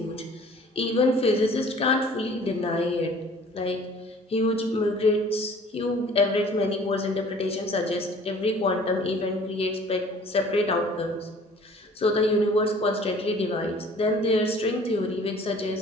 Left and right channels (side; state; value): both; normal; correlation 0.51